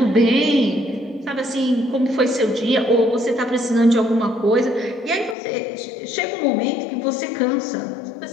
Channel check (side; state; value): right; drops out; at 5.4 s